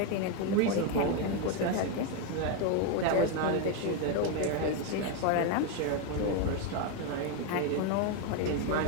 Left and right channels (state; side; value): different; both; correlation 0.02